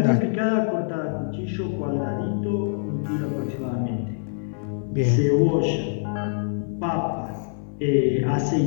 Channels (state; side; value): silent; right; digital silence